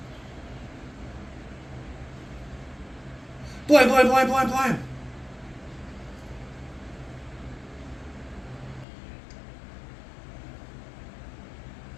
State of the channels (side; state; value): right; drops out; at 8.8 s